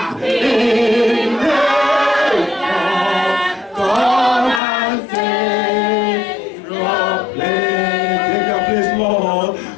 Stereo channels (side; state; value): right; drops out; at 4.6 s